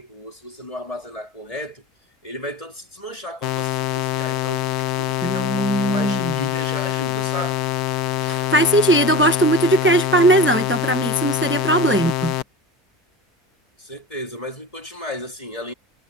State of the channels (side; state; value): both; normal; correlation 0.31